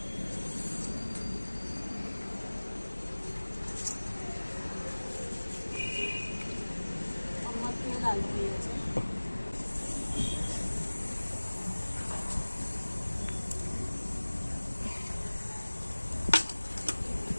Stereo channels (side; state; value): both; inverted; correlation -1.00